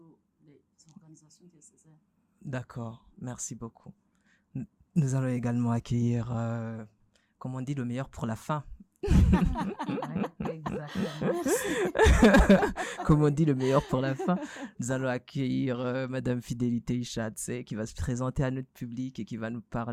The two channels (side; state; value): both; identical; correlation 1.00